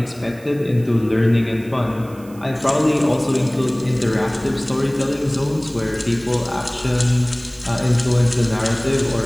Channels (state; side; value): noise; right; hiss, 25 dB below the sound